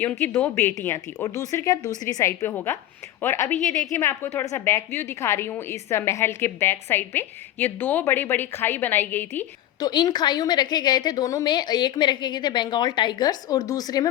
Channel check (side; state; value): right; quieter; 13.2 dB